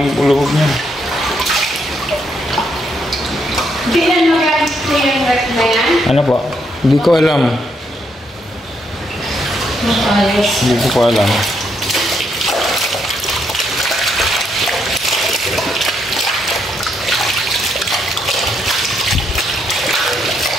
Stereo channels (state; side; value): normal; both; correlation 0.76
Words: yung ulubog niya. Hindi na magamit ko yung rep na yan? Ano po? Hindi ko alam. Makalas. Hindi ko po alam.